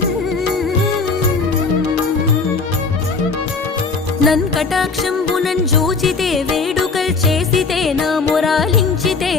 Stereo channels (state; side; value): quieter; right; 4.4 dB